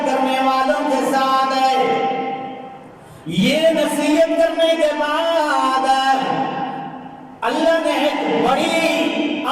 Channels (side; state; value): both; identical; correlation 1.00